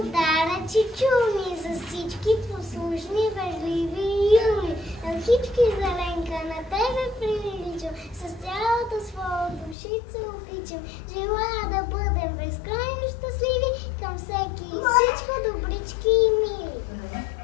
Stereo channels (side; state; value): right; drops out; at 9.8 s